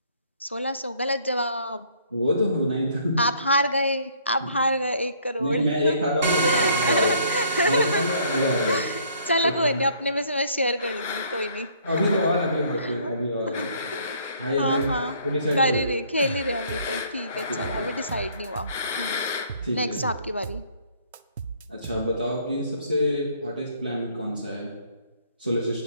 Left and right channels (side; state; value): both; inverted; correlation -0.61